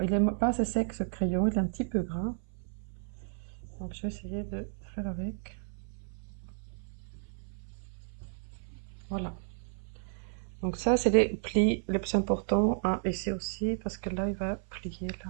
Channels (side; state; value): left; silent; 56 dB below the other